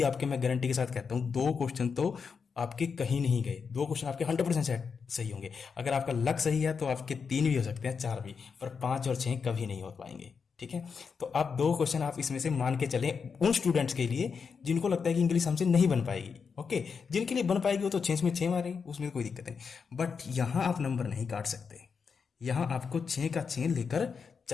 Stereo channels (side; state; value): right; quieter; 5.8 dB